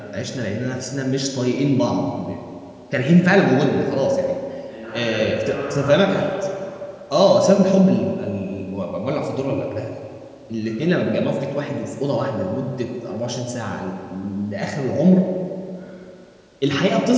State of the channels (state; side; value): identical; both; correlation 1.00